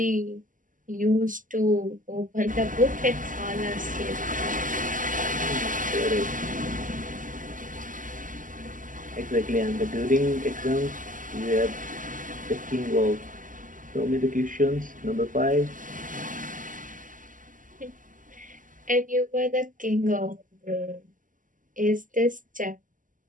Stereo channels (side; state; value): left; late; 0.38 ms